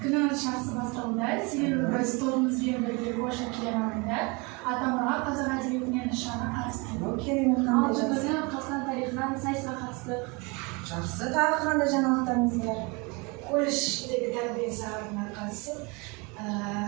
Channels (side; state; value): left; quieter; 28.6 dB